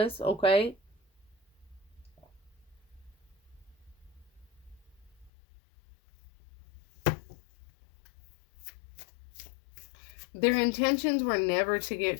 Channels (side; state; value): right; drops out; at 5.3 s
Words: okay? Their intentions were never to